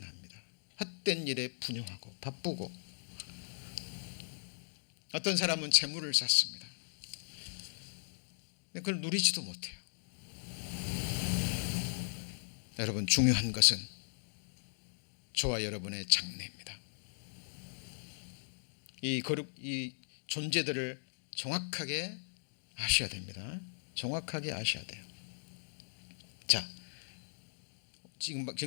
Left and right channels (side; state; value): right; silent; digital silence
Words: 헛된 일에 분용하고 바쁘고, 어떤 사람은 재물을 쌓습니다. 그걸 누리지도 못해요. 여러분, 중요한 것은 저와 여러분의 장래입니다. 이 존재들을 정확하게 아셔야 됩니다. 정확하게 아셔야 돼요. 자,